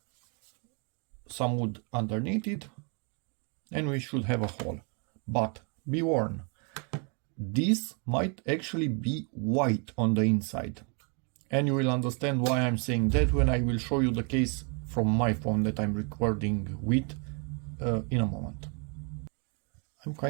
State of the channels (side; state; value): left; quieter; 36.9 dB